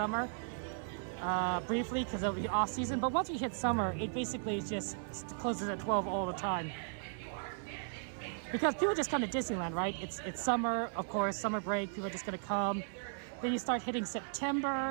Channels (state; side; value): silent; left; 54 dB below the other